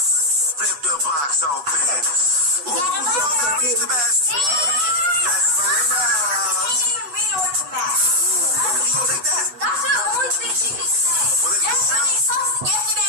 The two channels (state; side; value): late; left; 8.2 ms